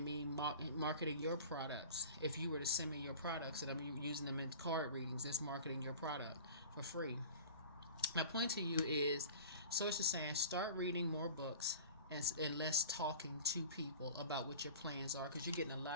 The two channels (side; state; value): both; inverted; correlation -0.40